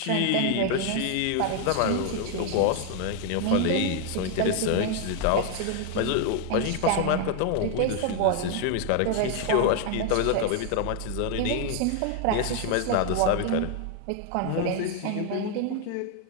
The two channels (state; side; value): different; both; correlation 0.00